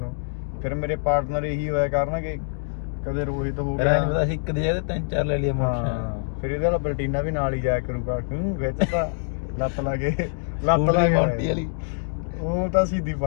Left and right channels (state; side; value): silent; right; digital silence